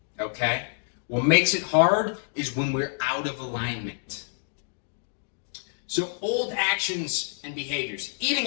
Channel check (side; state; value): right; silent; digital silence